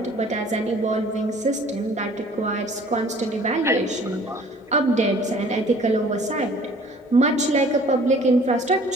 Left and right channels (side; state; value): both; normal; correlation 0.52